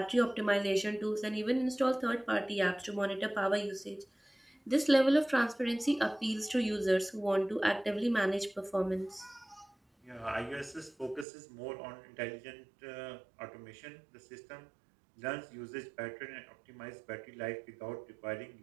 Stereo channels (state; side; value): drops out; left; at 11.2 s